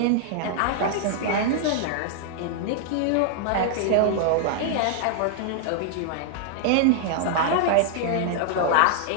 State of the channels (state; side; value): different; both; correlation -0.01